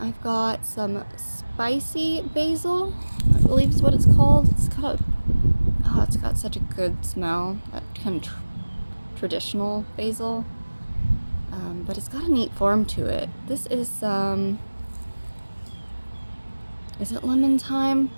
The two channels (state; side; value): inverted; both; correlation -1.00